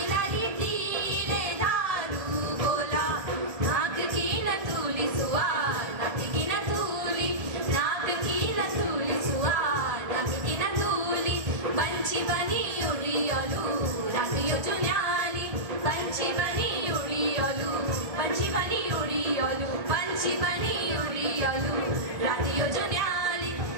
लाली तिले धारू बोला नाक की न तूली सुआ नाक की न तूली नाक की न तूली सुआ नाक की न तूली पंछी बनी उड़ी ओलू रंग यो जुन्याली पंछी बनी उड़ी ओलू पंछी बनी उड़ी ओलू पंछी बनी उड़ी ओलू रात यो जुन्याली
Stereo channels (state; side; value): late; left; 1.7 ms